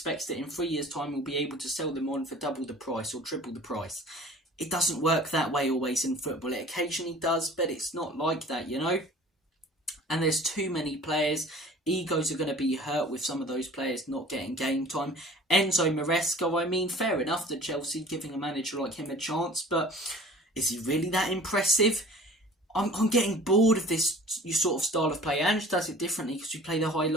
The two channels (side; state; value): both; normal; correlation 0.45